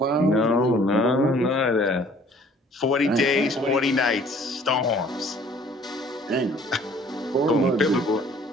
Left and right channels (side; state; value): both; normal; correlation 0.55